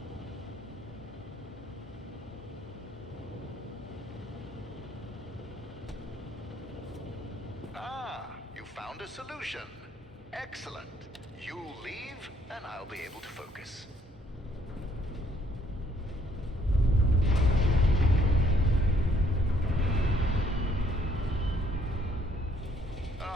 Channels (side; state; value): both; normal; correlation 0.66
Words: Ah, you found a solution. Excellent. You leave, and I'll be able to focus.